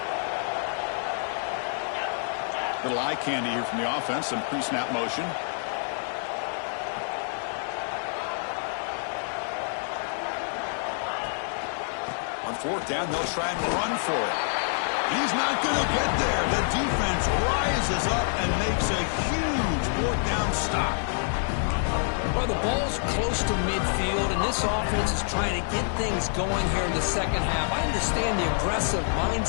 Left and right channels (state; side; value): silent; right; digital silence